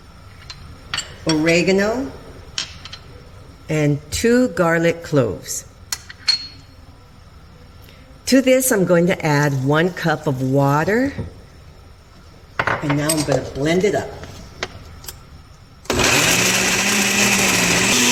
oregano, and 2 garlic cloves. To this, I'm going to add 1 cup of water, and now I'm going to blend it up.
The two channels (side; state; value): both; identical; correlation 1.00